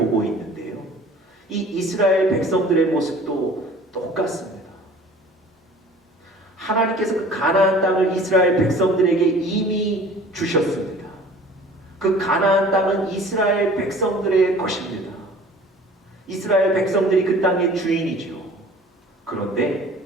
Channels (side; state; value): both; normal; correlation 0.47